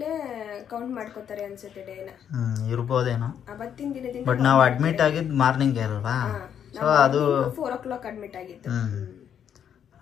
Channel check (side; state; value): right; quieter; 8.7 dB